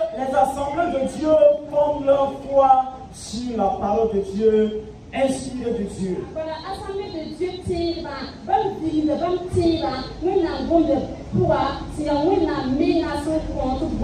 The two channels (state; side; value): identical; both; correlation 1.00